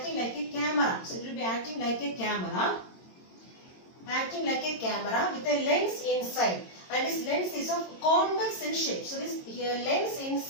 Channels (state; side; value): late; right; 22 ms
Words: like a camera. So it will be acting like a camera, with a lens inside, and this lens is of convex in shape. So this lens